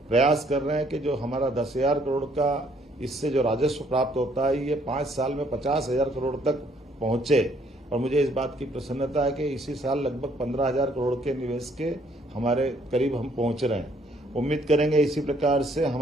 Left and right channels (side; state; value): both; normal; correlation 0.65